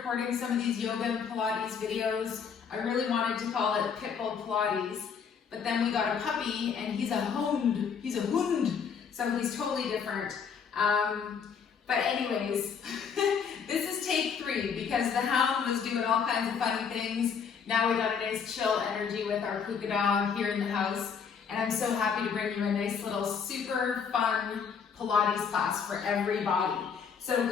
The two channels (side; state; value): right; quieter; 6.5 dB